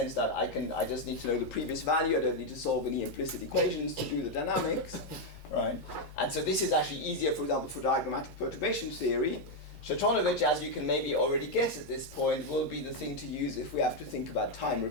that I just need to know the previous value. I don't need to solve any implicit equations to do the dynamics, right? And so this is actually easier, for example, for diagrammatic perturbation theory. Tratonovich, as you can maybe already guess at this point, will be the thing to use if we have to think about time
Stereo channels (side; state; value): both; normal; correlation 0.02